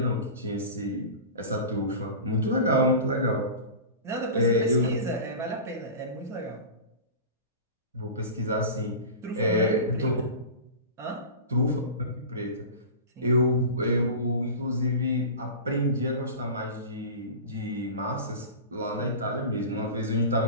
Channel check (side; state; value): both; inverted; correlation -0.32